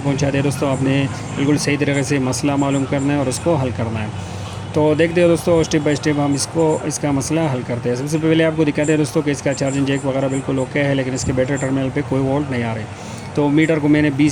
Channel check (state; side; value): identical; both; correlation 1.00